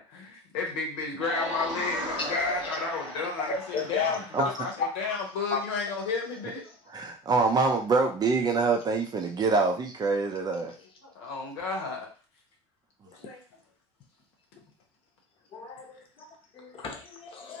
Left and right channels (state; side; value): normal; both; correlation 0.35